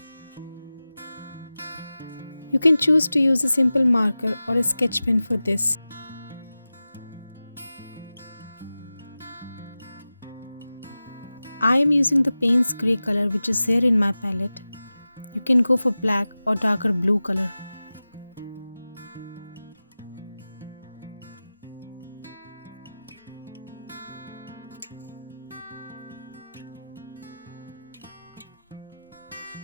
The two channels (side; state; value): both; inverted; correlation -0.96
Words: choose to use a simple marker or a sketch pen for this. I am using the Payne's grey color which is there in my palette. You can go for black or darker blue color.